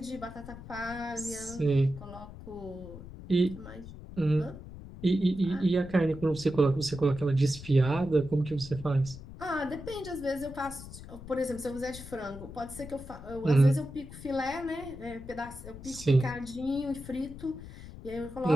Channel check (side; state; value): left; noise; rumble, 14 dB below the sound